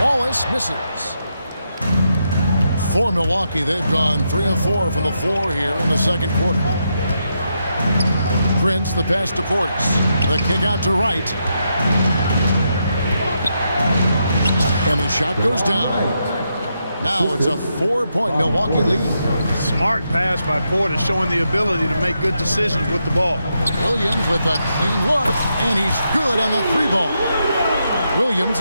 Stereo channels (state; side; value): inverted; both; correlation -0.82